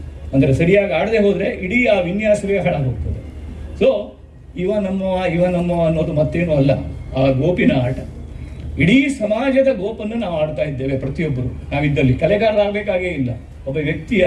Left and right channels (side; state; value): both; identical; correlation 1.00